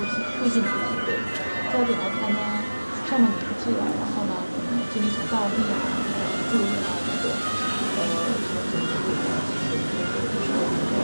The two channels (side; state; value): both; inverted; correlation -1.00